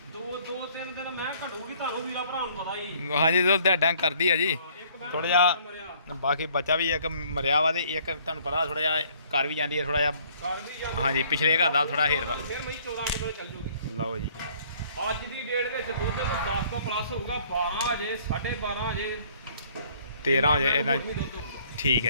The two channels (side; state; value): both; inverted; correlation -0.60